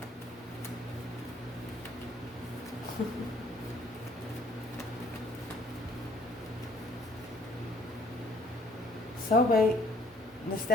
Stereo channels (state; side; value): normal; both; correlation 0.61